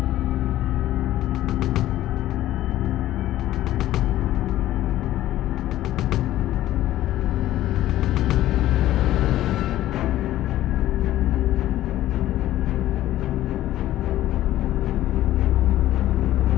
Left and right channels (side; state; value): right; quieter; 14.1 dB